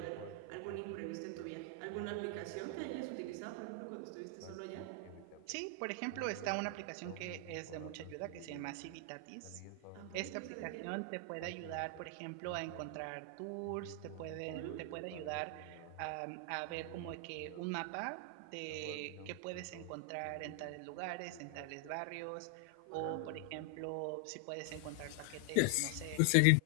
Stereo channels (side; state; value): both; different; correlation 0.00